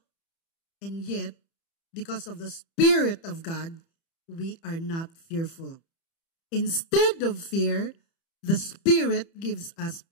And yet, because of the Spirit of God, we are not fearful. Instead of fear, the Spirit gives us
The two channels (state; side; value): late; right; 30 ms